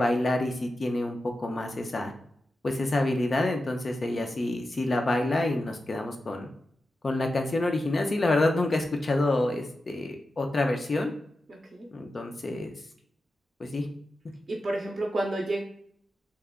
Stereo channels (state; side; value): normal; both; correlation 0.91